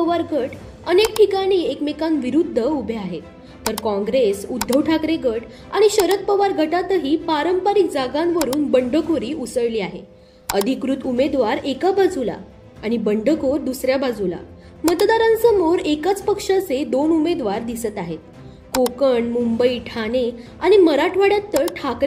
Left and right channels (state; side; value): identical; both; correlation 1.00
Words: गट अनेक ठिकाणी एकमेकांविरुद्ध उभे आहेत, तर काँग्रेस, उद्धव ठाकरे गट आणि शरद पवार गटातही पारंपरिक जागांवरून बंडखोरी उसळली आहे. अधिकृत उमेदवार एका बाजूला आणि बंडखोर दुसऱ्या बाजूला. मतदारांसमोर एकाच पक्षाचे 2 उमेदवार दिसत आहेत. कोकण, मुंबई, ठाणे आणि मराठवाड्यात तर